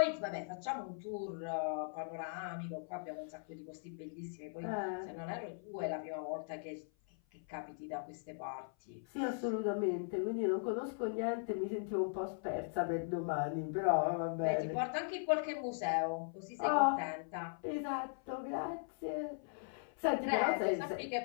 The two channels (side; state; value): right; silent; 52 dB below the other